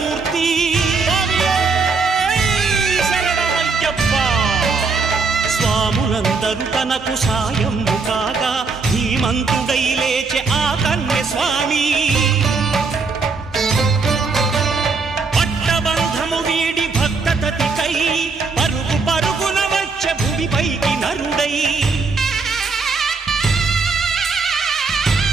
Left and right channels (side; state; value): left; quieter; 4.4 dB